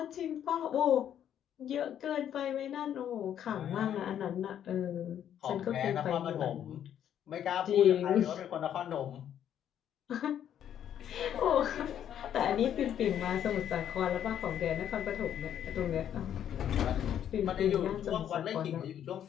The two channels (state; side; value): quieter; right; 9.9 dB